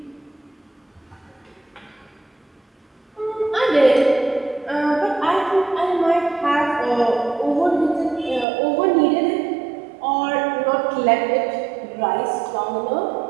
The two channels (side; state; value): left; drops out; at 8.5 s